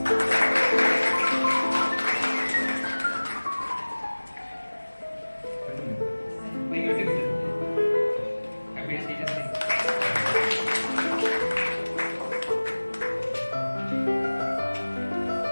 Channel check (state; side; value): inverted; both; correlation -1.00